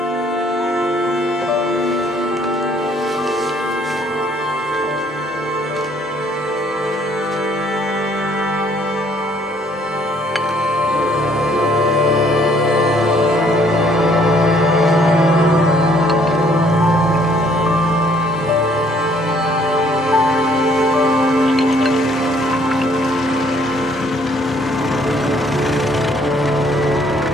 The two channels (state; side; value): normal; both; correlation 0.63